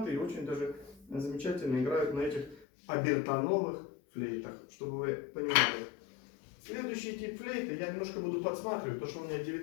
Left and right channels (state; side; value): drops out; right; at 2.7 s